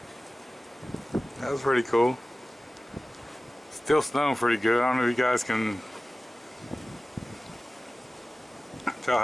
That was pretty cool. Still snowing pretty good. I don't know if you guys can tell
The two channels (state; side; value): normal; both; correlation 0.96